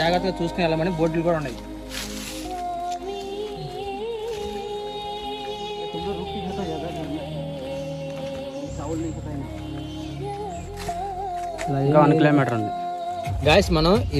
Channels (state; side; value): identical; both; correlation 1.00